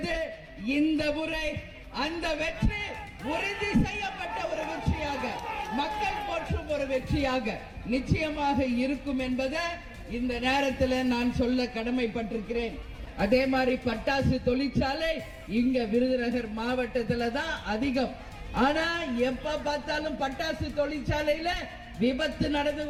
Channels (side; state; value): both; identical; correlation 1.00